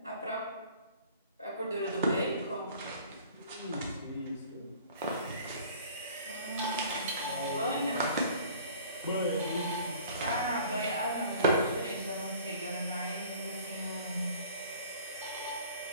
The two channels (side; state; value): both; inverted; correlation -0.49